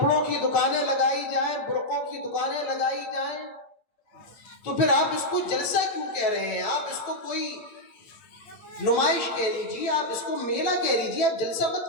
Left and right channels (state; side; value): late; right; 8.9 ms